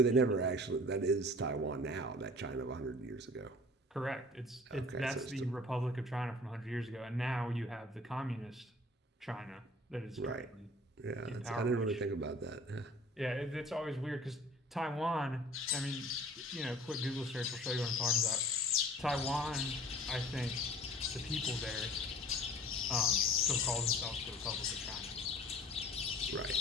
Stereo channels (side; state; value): both; normal; correlation 0.47